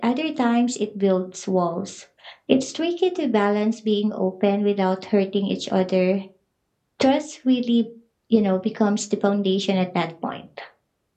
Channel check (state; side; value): identical; both; correlation 1.00